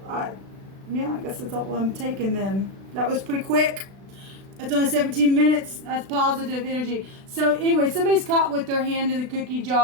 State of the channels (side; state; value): left; late; 36 ms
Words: guess that's all I'm taking then. That was pretty quick. It's only 17 minutes. That's positive energy. So anyway, somebody's caught with their hand in the cookie